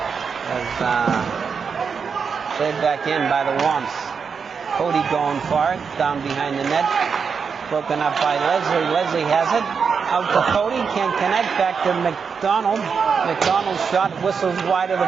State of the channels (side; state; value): left; quieter; 5.9 dB